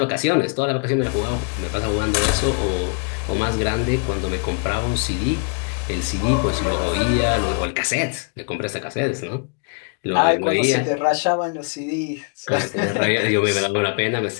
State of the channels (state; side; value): quieter; right; 39.6 dB